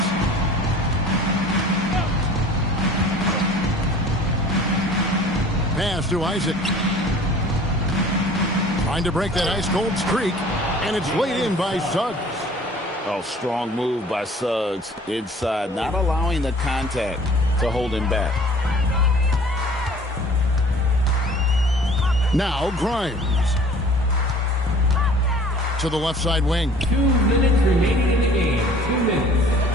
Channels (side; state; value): both; normal; correlation 0.49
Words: Pass to Isaac. Trying to break that ice-cold streak. And it's laid in by Suggs. Oh, strong move by Suggs inside, not allowing the contact to hold him back. Now Grimes. To the left side wing. 2 minutes remaining in the game. 2 minutes.